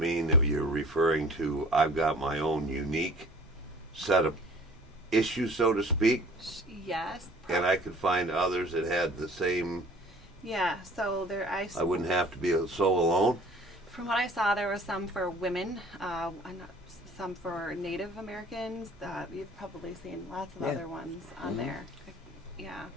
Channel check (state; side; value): normal; both; correlation 0.49